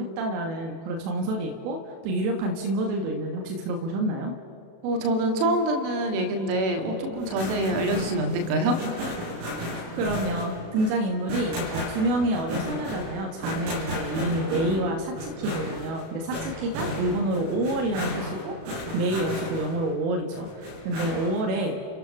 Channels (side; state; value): left; late; 37 ms